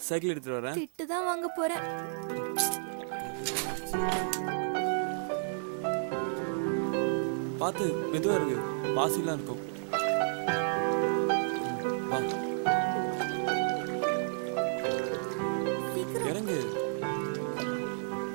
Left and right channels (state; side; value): silent; left; digital silence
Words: சைக்கிள் எடுத்துட்டு வரேன். திட்டு தான் வாங்க போறேன். பாத்து மெதுவா இருக்கு, பாசிலாம் இருக்கும். வா, சீக்கிரம் இறங்கு.